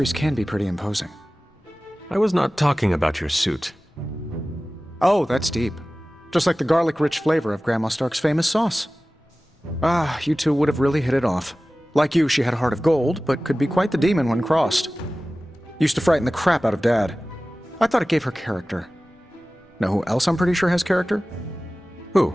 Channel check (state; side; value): normal; both; correlation 0.97